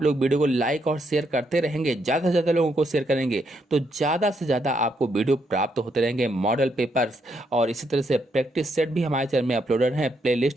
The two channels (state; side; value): normal; both; correlation 0.77